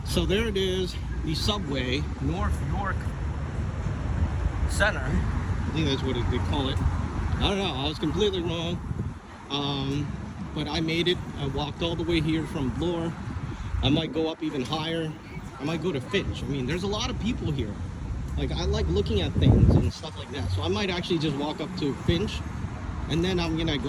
so there it is, the subway, North York Center. I think that's what they call it. I don't know, I was completely wrong. But I made it. I walked all the way here from Bloor. I might go up even higher. I might go to Finch. I mean, there's a lot of people here. Like, I like looking at things and stuff like that. So I might actually just walk up to Finch and then I'm gonna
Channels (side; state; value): both; identical; correlation 1.00